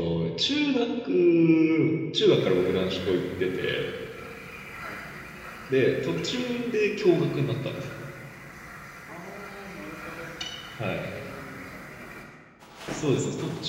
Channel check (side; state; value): both; identical; correlation 1.00